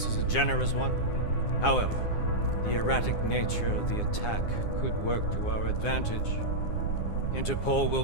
is a generous one. However, the erratic nature of the attack could work to our advantage. Interpol will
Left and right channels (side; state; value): right; late; 9.7 ms